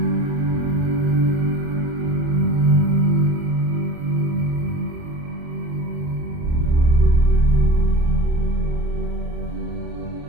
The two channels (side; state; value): left; late; 29 ms